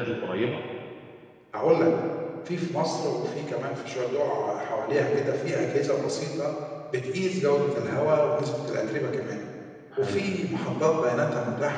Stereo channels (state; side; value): identical; both; correlation 1.00